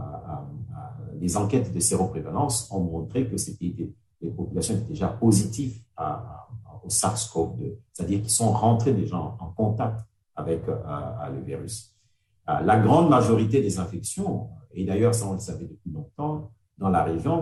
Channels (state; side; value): identical; both; correlation 1.00